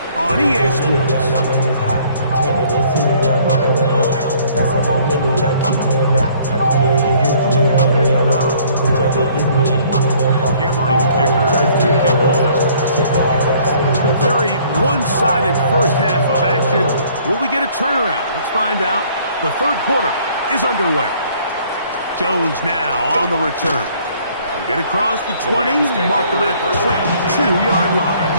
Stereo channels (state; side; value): inverted; both; correlation -0.59